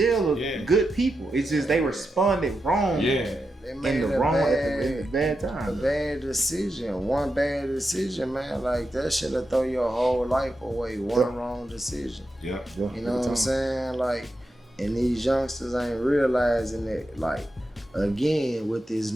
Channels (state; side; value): normal; both; correlation 0.88